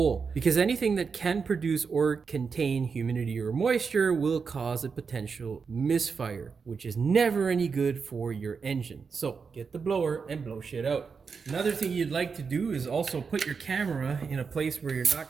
Because anything that can produce or contain humidity or moisture will cause a potential misfire, which is never any good for your engine. So get the blower and blow shit out. Another thing you'd like to do is also put your camera in a place where you're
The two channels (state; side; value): quieter; left; 5.5 dB